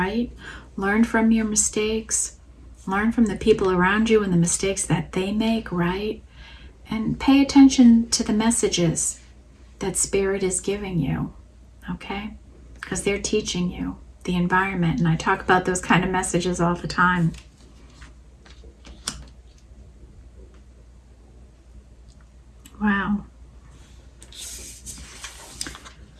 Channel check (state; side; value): identical; both; correlation 1.00